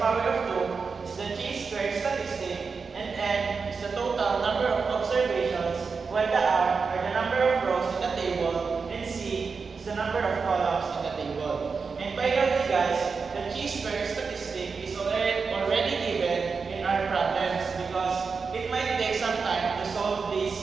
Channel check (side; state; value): left; quieter; 5.0 dB